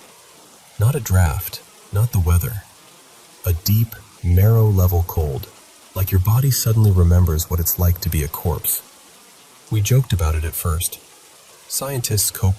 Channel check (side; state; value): both; identical; correlation 1.00